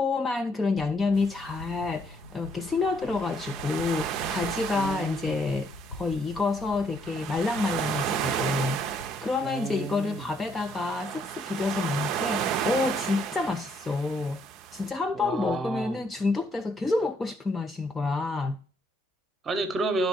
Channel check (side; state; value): both; normal; correlation 0.70